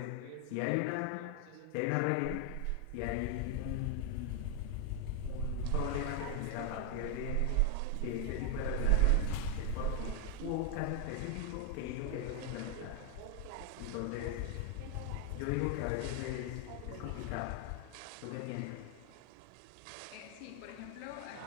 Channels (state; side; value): different; both; correlation 0.01